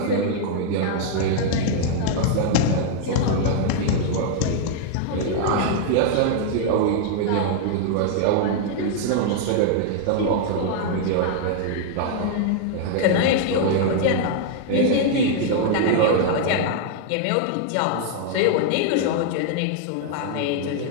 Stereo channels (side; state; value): both; different; correlation 0.00